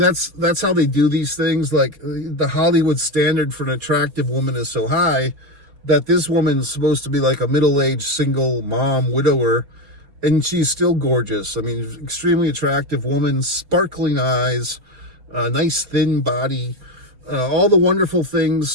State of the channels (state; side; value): late; left; 4.2 ms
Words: how they do these things. Like, the Hollywood standard for an attractive woman is so high that this woman's supposed to be like a middle-aged single mom, widower, and she's still gorgeous. I mean, extremely attractive woman, sparkling eyes, nice thin body, all the wonderful